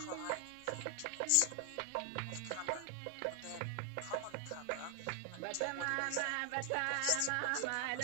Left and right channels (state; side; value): different; both; correlation 0.00